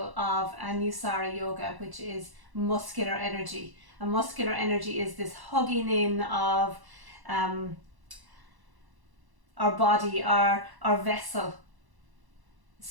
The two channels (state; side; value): late; left; 1.1 ms